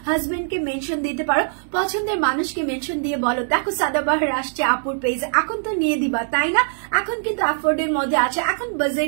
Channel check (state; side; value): silent; left; digital silence